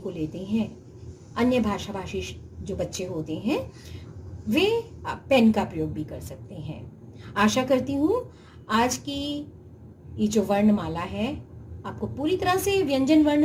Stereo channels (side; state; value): both; identical; correlation 1.00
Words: लेते हैं, अन्य भाषी जो बच्चे होते हैं, वे पेन का प्रयोग भी कर सकते हैं। आशा करती हूँ आज की ये जो वर्णमाला है आपको पूरी तरह से व्यंजन